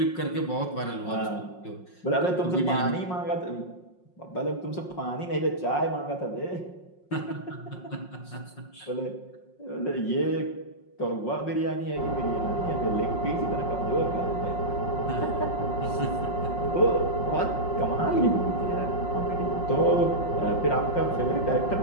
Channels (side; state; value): right; late; 5.5 ms